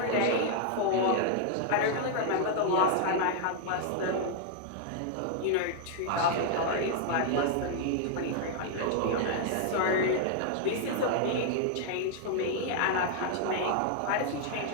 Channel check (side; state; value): both; different; correlation -0.01